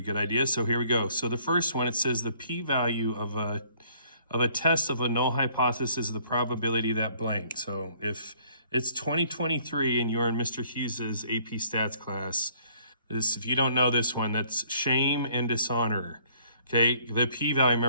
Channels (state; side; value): inverted; both; correlation -0.61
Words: good idea, so here we go. So the first one, it says the p-value of a test of a null hypothesis is the probability that blank. So if it's 2023 and you're in Mr. Hughes's AP Stats class, if you don't know this one, that's shame and dishonor. Okay, the p-value,